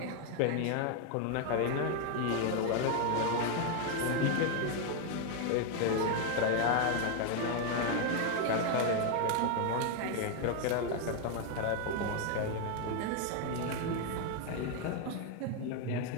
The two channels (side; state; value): both; different; correlation 0.01